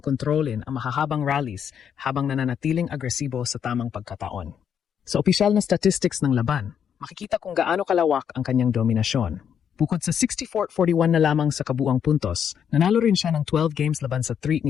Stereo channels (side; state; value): right; quieter; 8.2 dB